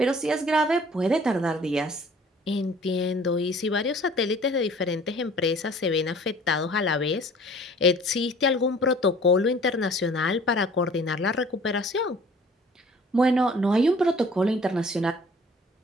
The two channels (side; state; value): both; normal; correlation 0.51